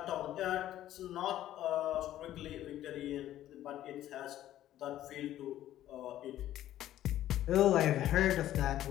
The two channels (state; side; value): quieter; right; 12.9 dB